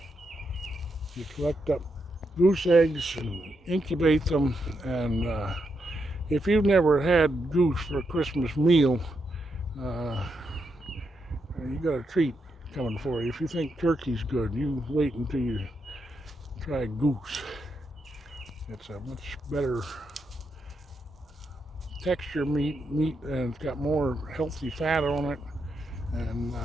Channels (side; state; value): both; normal; correlation 0.82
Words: you collect up goose eggs and incubate them. And if you've never had goose for a Christmas meal, you got a treat coming for you. If you think turkey's good, you wait until you try goose. It's a much better texture meat, and it's got more healthy fat on it, and